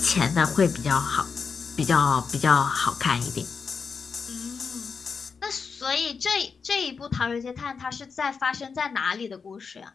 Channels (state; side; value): quieter; right; 5.5 dB